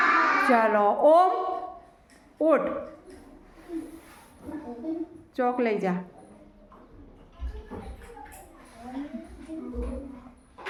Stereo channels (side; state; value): both; identical; correlation 1.00